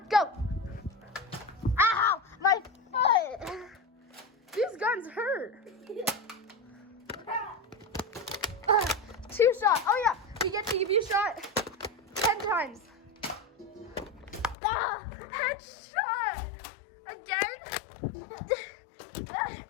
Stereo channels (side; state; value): right; drops out; at 14.6 s